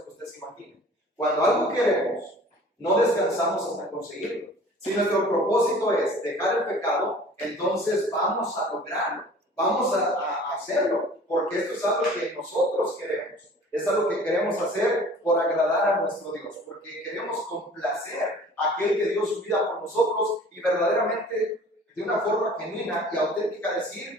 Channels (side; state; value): both; normal; correlation 0.47